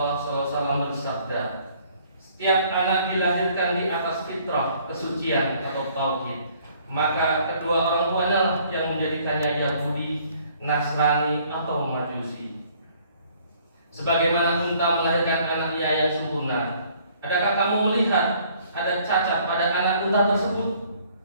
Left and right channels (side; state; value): both; inverted; correlation -0.60